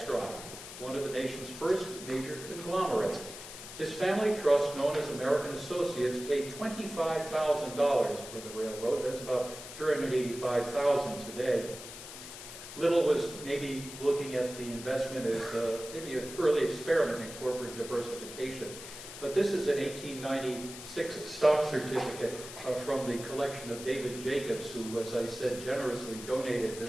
one of the nation's first major conglomerates. This family trust, known as American Associates, paid $25,000 for the railroad. That's about $385,000 today. Little was maybe looking at the investment as maybe an early experiment in corporate diversification. But this is an 1896 stock certificate from the collection of David Jacobs, who, as I said, generously donated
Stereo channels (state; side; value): noise; left; hiss, 12 dB below the sound